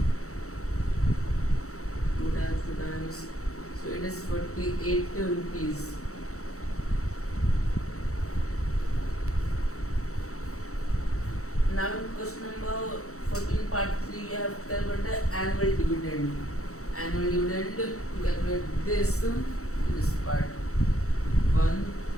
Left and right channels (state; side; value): late; right; 0.64 ms